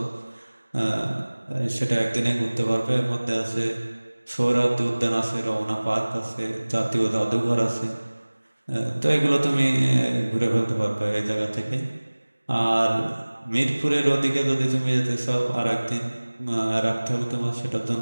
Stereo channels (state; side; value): inverted; both; correlation -1.00